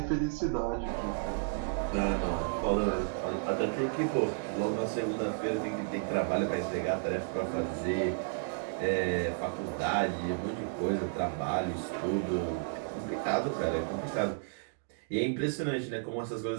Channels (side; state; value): left; silent; digital silence